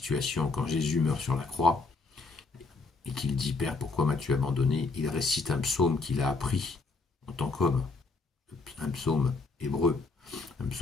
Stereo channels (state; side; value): quieter; right; 3.9 dB